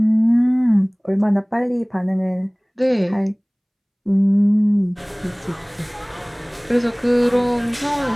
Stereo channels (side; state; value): both; identical; correlation 1.00